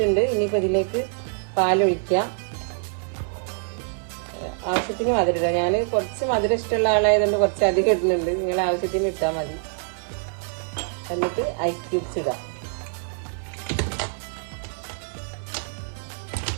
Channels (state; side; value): silent; left; 56 dB below the other